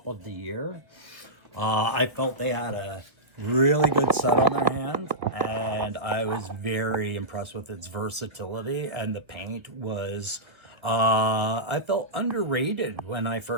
of the year. I felt they had a really good set on their hands, and I was very impressed with its versatility, and the paint was, I felt underrated when I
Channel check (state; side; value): late; left; 1.5 ms